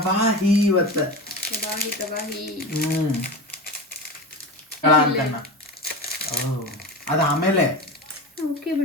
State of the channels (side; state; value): both; normal; correlation 0.26